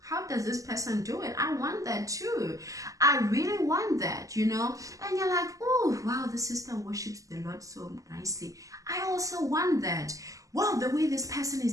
does this person do it? I want that too. I really want that, you know. And you're like, oh wow, the sister worships the Lord so nicely. I also want that. Wow, the way this person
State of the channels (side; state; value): left; late; 0.16 ms